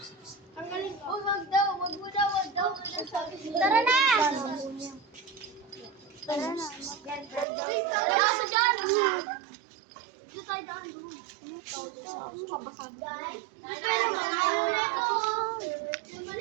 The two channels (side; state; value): left; drops out; at 7.5 s